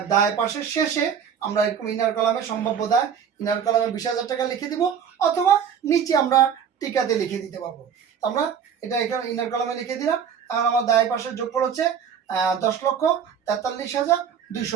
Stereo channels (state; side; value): quieter; left; 7.7 dB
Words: দায় পাশের শেষে আমরা এরকম ইনার কলামে সম্ভাব্য দায়, ইনার কলামে 20,000 টাকা লিখে দিব, অথবা নিচে আমরা টিকাতে লিখে দিতে পারবো। আমরা এটা এখানে ইনার কলামে লিখে দিলাম, কারণ আমার দায় পাশের যোগফল হচ্ছে